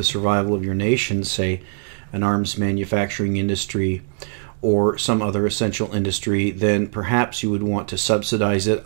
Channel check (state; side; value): silent; left; digital silence